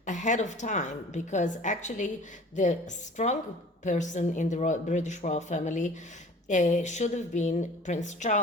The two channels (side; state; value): both; normal; correlation 0.46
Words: ahead of time, because actually the strong person in the British royal family should have been Prince